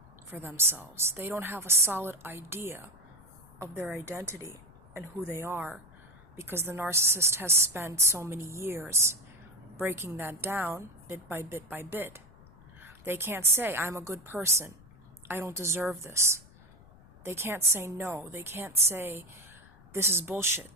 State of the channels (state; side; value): noise; left; rumble, 24 dB below the sound